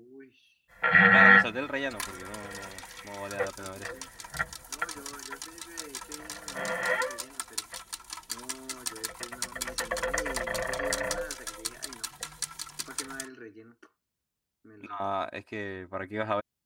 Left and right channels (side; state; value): both; identical; correlation 1.00